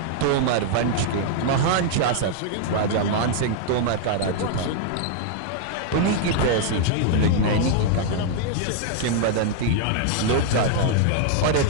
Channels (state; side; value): different; both; correlation -0.01